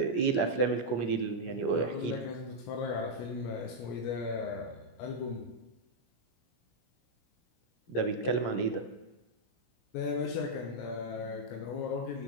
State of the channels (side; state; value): right; late; 17 ms